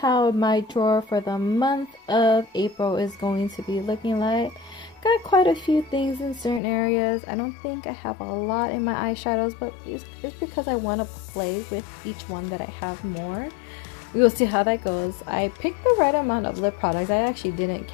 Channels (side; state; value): right; drops out; at 6.6 s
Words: my drawer for the month of April is going to be looking like. Got quite a few things in certain areas. I don't think I have a lot in my eyeshadows, but it's because I want to play with each one that I have more. We will see how that goes. I picked the right amount of lip products. I actually didn't